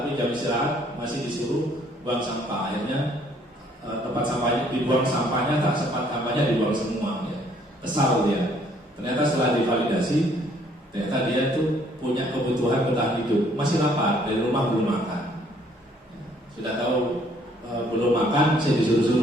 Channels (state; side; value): normal; both; correlation 0.63